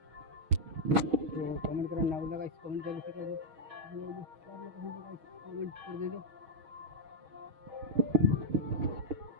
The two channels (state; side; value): late; left; 6.3 ms